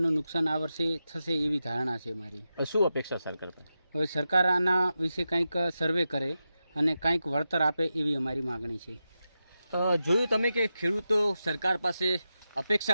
નુકસાન આ વર્ષે થશે એવી ધારણા છે મારી. શું અપેક્ષા સરકાર પર? હવે સરકાર આના વિશે કંઈક સર્વે કરે અને કંઈક વળતર આપે એવી અમારી માગણી છે. જોયું તમે કે ખેડૂતો સરકાર પાસે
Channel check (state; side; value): inverted; both; correlation -0.90